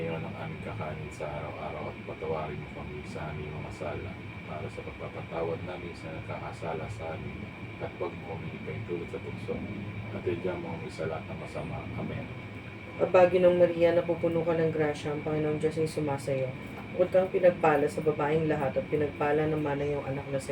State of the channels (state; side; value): identical; both; correlation 1.00